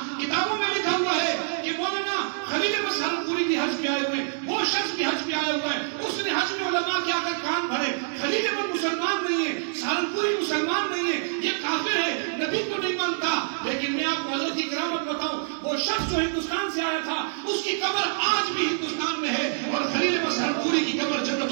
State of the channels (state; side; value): silent; left; 58 dB below the other